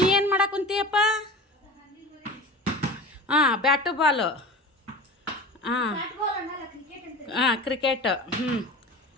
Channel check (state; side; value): normal; both; correlation 0.34